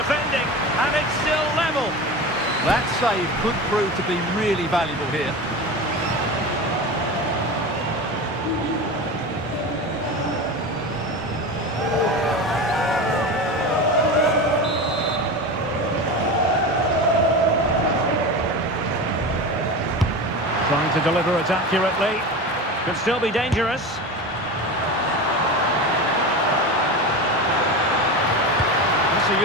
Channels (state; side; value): normal; both; correlation 0.27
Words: and it's still level. That save could prove to be really valuable here. Trying to deliver it accurately. Could still be dangerous. That's a